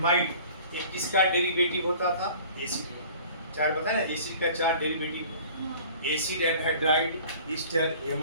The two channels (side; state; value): both; inverted; correlation -0.47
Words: ये किसका डेरिवेटिव होता था? एसिड का। चार बताया ना, एसिड का 4 derivative. Acid anhydride, Easter,